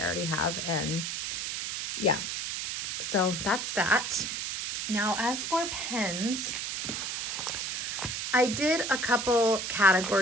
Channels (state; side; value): noise; right; hiss, 3 dB below the sound